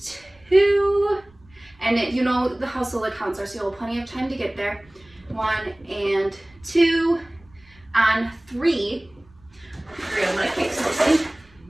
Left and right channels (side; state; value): right; noise; rumble, 29 dB below the sound